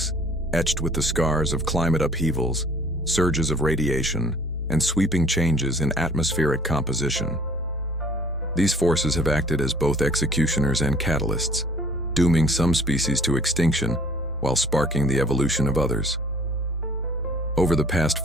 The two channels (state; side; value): normal; both; correlation 0.54